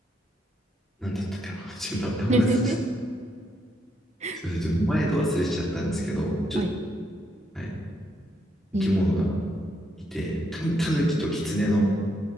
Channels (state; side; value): normal; both; correlation 0.77